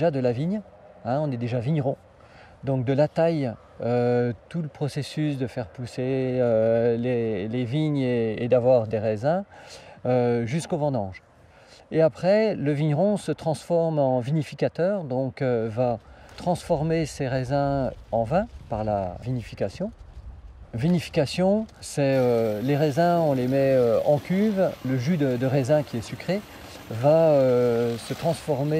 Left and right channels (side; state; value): both; identical; correlation 1.00